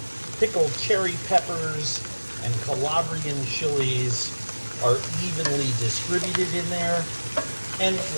pickled cherry peppers and Calabrian chilies are evenly distributed in there. And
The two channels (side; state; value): both; inverted; correlation -1.00